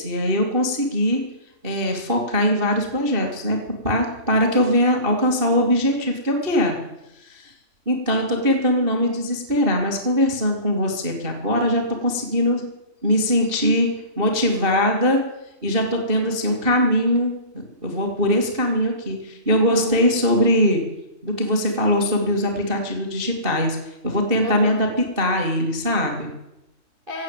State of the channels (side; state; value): left; late; 2.7 ms